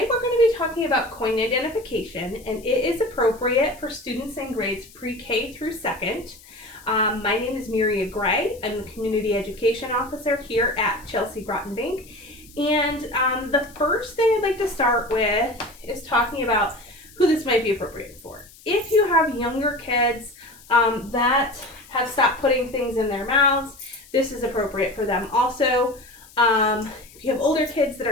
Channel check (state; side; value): noise; left; hiss, 23 dB below the sound